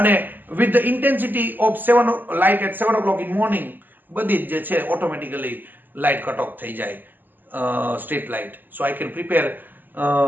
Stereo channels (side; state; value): left; late; 0.089 ms